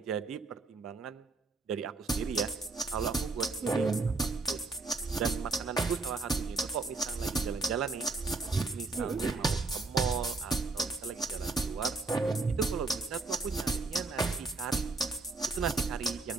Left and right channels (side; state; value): left; quieter; 3.7 dB